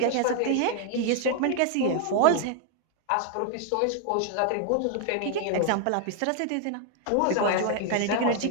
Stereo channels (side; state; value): both; different; correlation 0.00